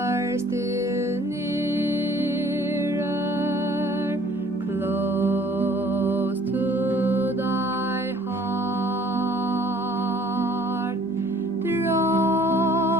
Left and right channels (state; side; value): normal; both; correlation 0.56